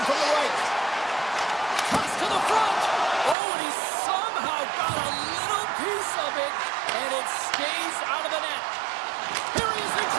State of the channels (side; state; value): left; drops out; at 3.4 s